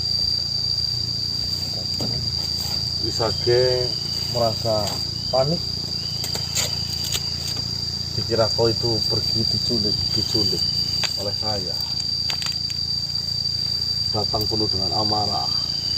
Wisage merasa panik. Dikira kau itu pergi diculik oleh saya. Datang penuh dengan amarah.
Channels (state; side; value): identical; both; correlation 1.00